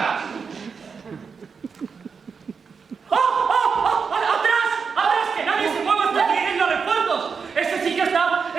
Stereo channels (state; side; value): quieter; left; 5.7 dB